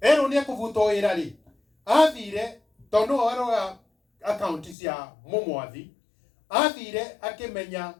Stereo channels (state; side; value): drops out; right; at 4.8 s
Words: Erwo nĩ ekũbutwo wĩra rĩ, athire, tondũ no arora account cia mũmwathi, athire akĩmenya